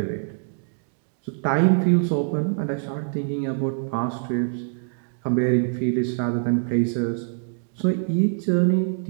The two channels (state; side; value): silent; left; digital silence